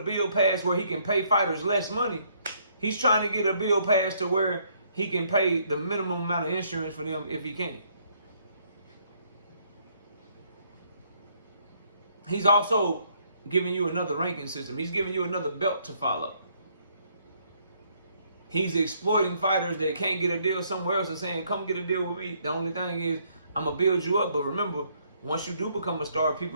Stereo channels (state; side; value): inverted; both; correlation -0.68